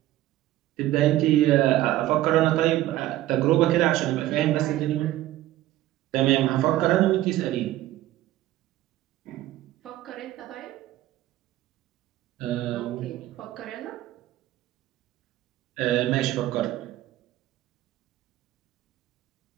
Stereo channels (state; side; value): quieter; left; 14.9 dB